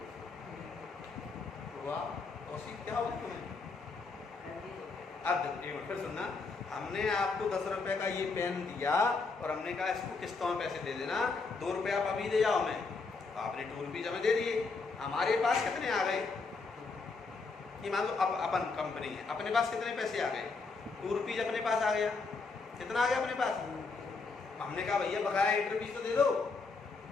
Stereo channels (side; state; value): right; quieter; 4.2 dB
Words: क्या होगा तुम्हें? अब फिर सुनना, हमने आपको 10 रुपए का ये पेन दिया और हमने कहा इसको किस्तों में पैसे दे देना, 2 रुपए आप अभी दे जाओ हमें, तो आपने 2 रुपीज हमें दे दिए। हमारे पास कितने आ गए? ये मान लो अब अपन कंपनी है, अपने पास कितने पैसे आ गए? 2 रुपीज अपने पास आ गया। कितना आ गया अपने पास? हमने कहा भैया बकाया 8 रुपीज तो दे दो।